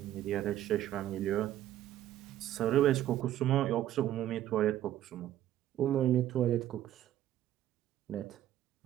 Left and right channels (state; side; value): quieter; left; 12.6 dB